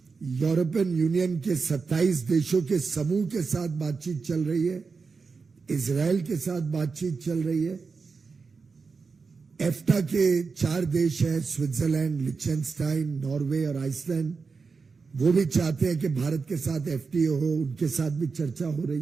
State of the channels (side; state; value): left; quieter; 4.8 dB